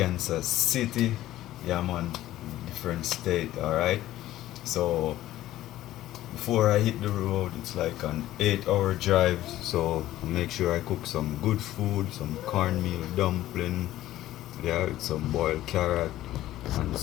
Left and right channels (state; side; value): quieter; right; 14.5 dB